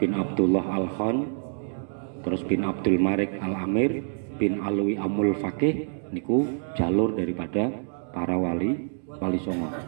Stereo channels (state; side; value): silent; left; digital silence